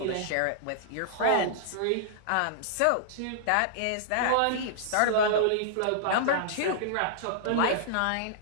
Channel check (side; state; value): both; different; correlation -0.02